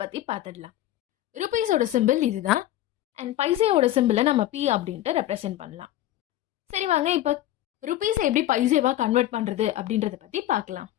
பற்றி பார்த்துடலாம். ருபீஸோட சிம்பிள் இதுதான். அண்ட் பைசேவோட சிம்பிளை நம்ம பி அப்படின்ட்டு ரெப்ரசென்ட் பண்ணலாம். சரி வாங்க இப்போ ருபீஸை எப்படி பைசேவாக கன்வெர்ட் பண்ணுறது அப்படின்றத பற்றி பார்க்கலாம்.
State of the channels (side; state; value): right; quieter; 14.0 dB